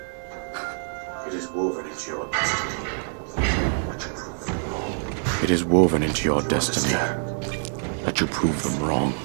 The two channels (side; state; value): left; silent; 58 dB below the other